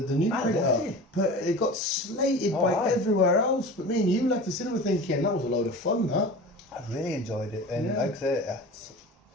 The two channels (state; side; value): normal; both; correlation 0.35